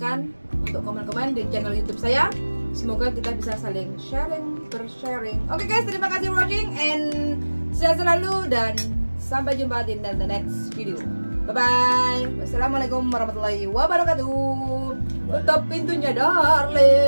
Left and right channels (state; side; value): inverted; both; correlation -1.00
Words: untuk komen-komen di channel YouTube saya. Semoga kita bisa saling bersharing. Oke guys, terima kasih watching and sehat selalu dan sampai jumpa di the next video. Bye bye. Wassalamualaikum warahmatullahi wabarakatuh. Tutup pintunya